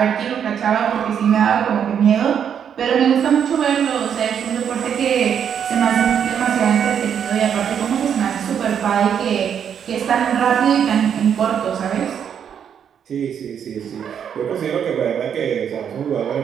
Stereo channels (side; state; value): left; quieter; 8.2 dB